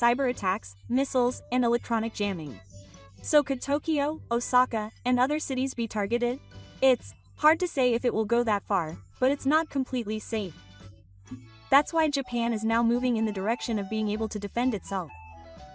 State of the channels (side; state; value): both; identical; correlation 1.00